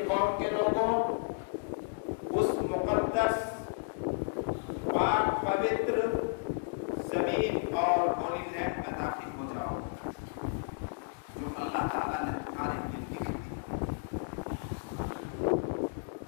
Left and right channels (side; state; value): right; silent; digital silence